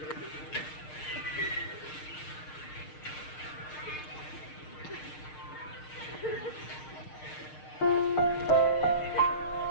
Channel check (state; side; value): late; right; 6.6 ms